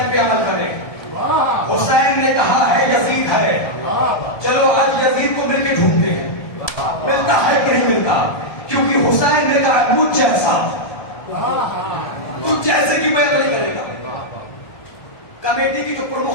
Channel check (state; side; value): late; right; 1.2 ms